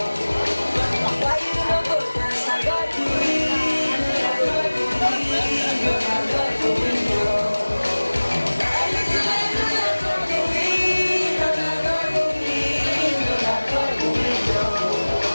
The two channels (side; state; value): both; inverted; correlation -1.00